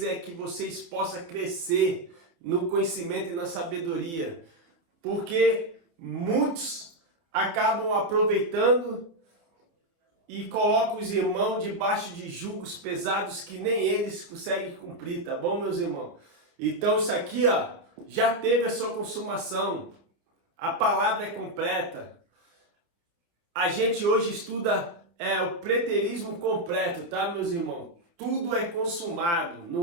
é que vocês possam crescer no conhecimento e na sabedoria, porque muitos acabam aproveitando e colocam os irmãos debaixo de julgos pesados que nem eles conseguem cumprir, tá bom, meus irmãos? Então isso aqui, já teve a sua consumação, a palavra é completa. A gente hoje estuda o preterismo completo, tá, meus irmãos? Tudo é consumado.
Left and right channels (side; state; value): left; late; 29 ms